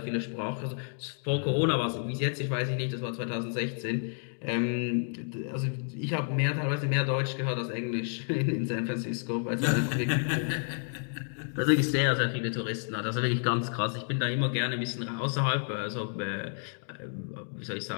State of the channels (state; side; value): silent; right; 58 dB below the other